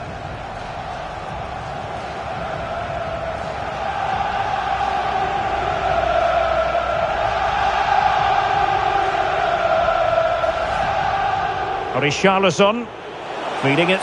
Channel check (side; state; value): both; identical; correlation 1.00